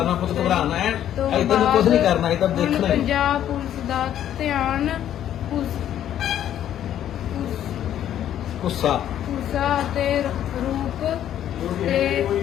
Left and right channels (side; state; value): right; quieter; 11.0 dB